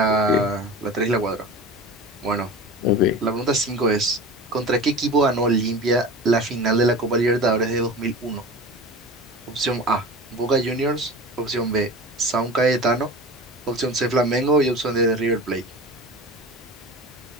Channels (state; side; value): normal; both; correlation 0.33